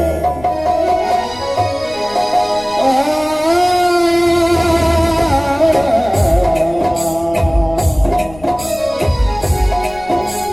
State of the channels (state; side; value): noise; left; rumble, 20 dB below the sound